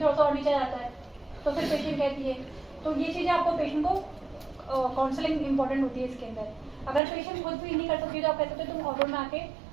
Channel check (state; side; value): drops out; left; at 7.0 s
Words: थोड़ा सा और नीचे आ जाता है तो फिर पेशेंट कहती है तो ये चीज़ें आपको पेशेंट को काउंसलिंग इंपॉर्टेंट होती है इसके अंदर अगर पेशेंट खुद भी नहीं कर सकती तो आप कह सकते हो तुम ऑर्डर में आके